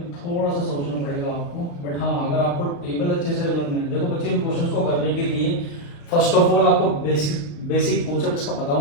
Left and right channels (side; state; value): right; late; 35 ms